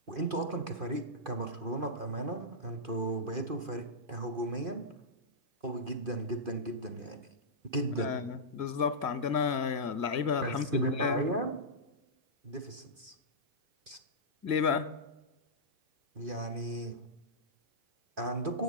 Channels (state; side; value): late; left; 2.5 ms